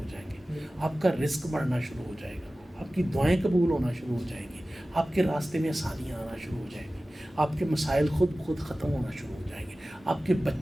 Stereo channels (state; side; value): normal; both; correlation 0.96